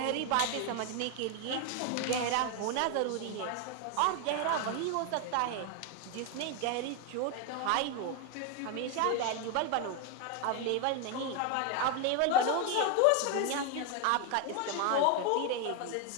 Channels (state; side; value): different; both; correlation 0.01